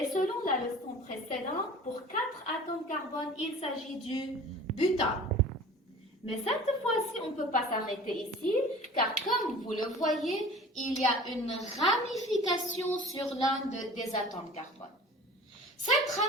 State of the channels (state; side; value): normal; both; correlation 0.42